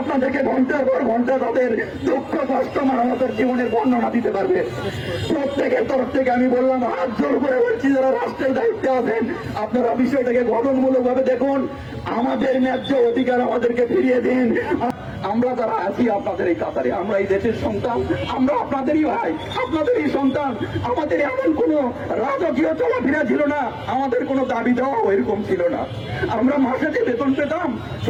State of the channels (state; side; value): identical; both; correlation 1.00